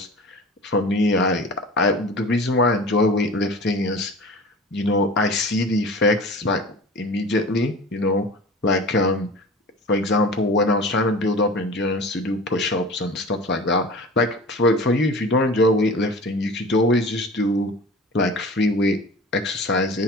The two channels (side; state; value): both; normal; correlation 0.38